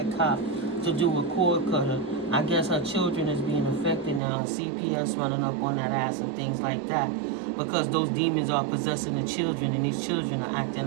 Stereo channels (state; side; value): drops out; left; at 4.2 s